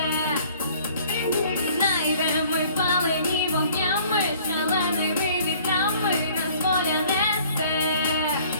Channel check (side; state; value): both; inverted; correlation -0.55